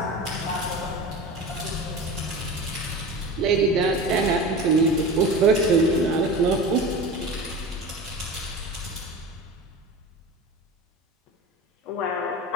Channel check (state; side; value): normal; both; correlation 0.32